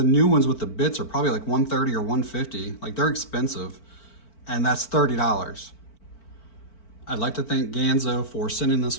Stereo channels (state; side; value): late; right; 4.5 ms